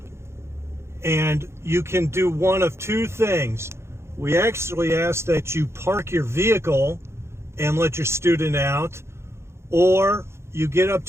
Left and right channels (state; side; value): late; left; 0.13 ms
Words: And you can do one of two things. We actually ask that you park your vehicle and let your student out, or you get up